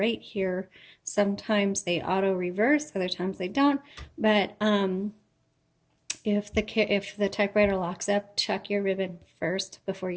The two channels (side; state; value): both; identical; correlation 1.00